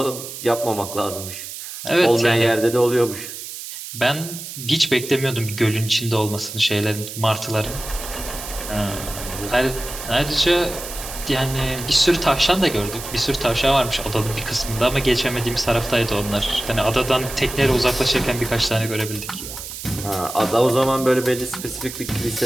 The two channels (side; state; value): right; noise; hiss, 10 dB below the sound